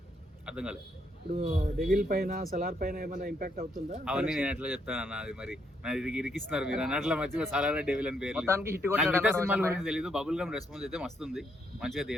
అర్థం కాలేదు. ఇప్పుడు డెవిల్ పైన, సలార్ పైన ఏమైనా ఇంపాక్ట్ అవుతుందా? అవన్నీ నేను ఎట్లా చెప్తాను అన్న, అది మరి ఇరికిస్తున్నారు మీరు అన్నట్ల మధ్య సలార్ డెవిల్ అని పేరు. మొత్తానికి హిట్ సినిమాల గురించి తెలియదు. బబుల్ గమ్ రెస్పాన్స్ అయితే మస్తుంది, మంచిగా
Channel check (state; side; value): normal; both; correlation 0.74